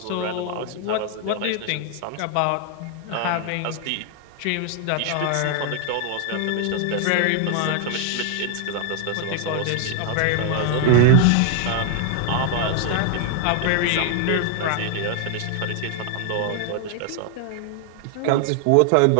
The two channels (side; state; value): both; different; correlation 0.00